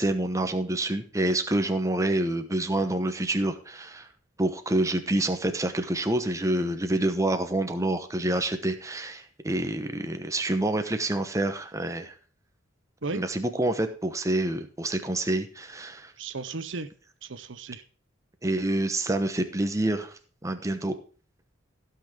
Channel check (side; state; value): both; normal; correlation 0.65